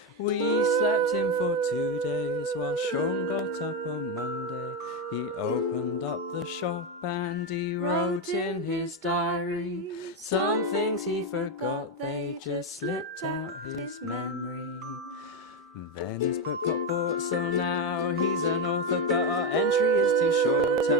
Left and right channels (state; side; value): normal; both; correlation 0.09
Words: We slept in for 2 days while Sean got up on Monday. He opened up the shop and he wrote in his diary some things he forgot, they just slipped out his memory. Then his book got bought, so now he's an author, but our entry is too short,